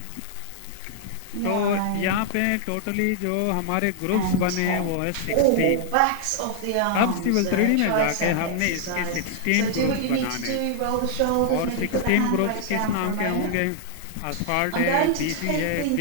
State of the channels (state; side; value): different; both; correlation 0.00